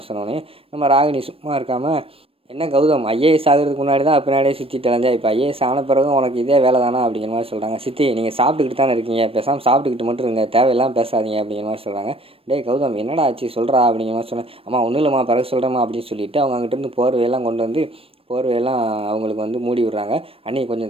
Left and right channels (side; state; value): left; late; 0.28 ms